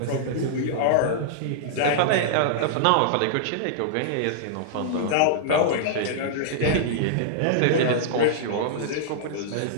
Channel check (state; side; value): different; both; correlation -0.02